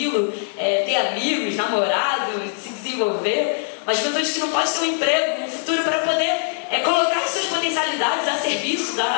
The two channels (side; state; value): right; silent; digital silence